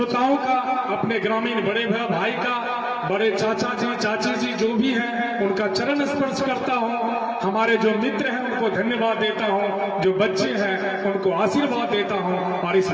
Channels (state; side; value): identical; both; correlation 1.00